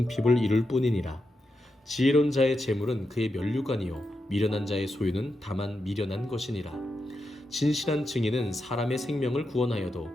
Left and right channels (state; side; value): normal; both; correlation 0.86